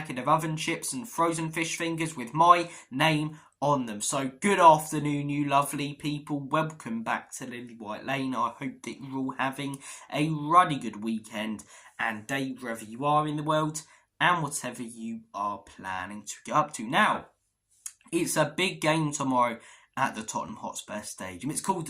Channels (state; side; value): identical; both; correlation 1.00